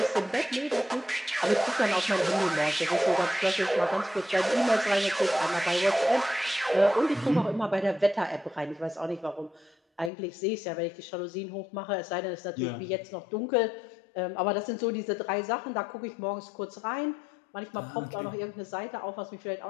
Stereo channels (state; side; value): drops out; right; at 10.1 s